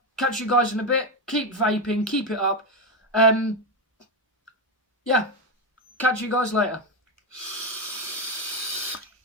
Catch you guys in a bit. Keep vaping. Keep it up. Yeah. Catch you guys later.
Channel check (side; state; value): both; normal; correlation 0.10